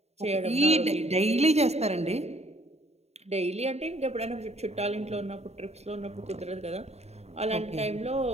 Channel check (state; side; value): late; left; 0.31 ms